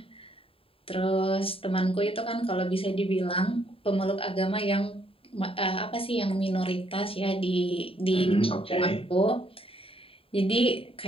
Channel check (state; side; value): late; right; 0.27 ms